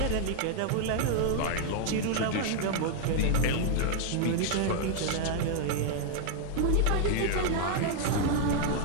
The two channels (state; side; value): different; both; correlation 0.00